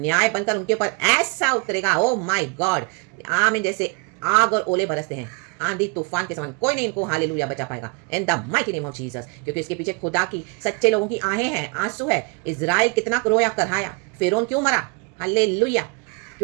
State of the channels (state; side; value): quieter; left; 32.3 dB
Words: बनकर उनके ऊपर ऐसा उतरेगा, ओ माय गॉड। आमीन, जैसे आग और ओले बरसते हैं, आंधी तूफान के समान, कोई नहीं इनको हालेलुया बचा पाएगा इन the mighty name of Jesus. क्योंकि इसके पीछे खुदा की, सच्चे लोगों की आहें हैं, आंसू है। इजराइल कितना रोया करहाया, फिरौन क्यों मरा, हालेलुया,